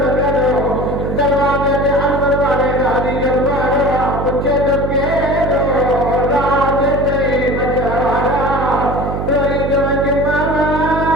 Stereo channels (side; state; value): right; noise; hum, 3 dB below the sound